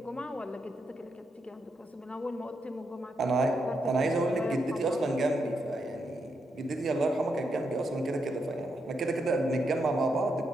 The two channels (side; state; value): both; normal; correlation 0.82